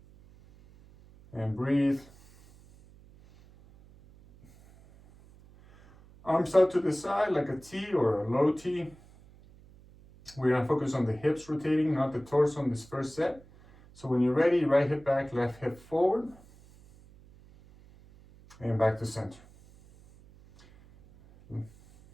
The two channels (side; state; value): right; noise; hum, 24 dB below the sound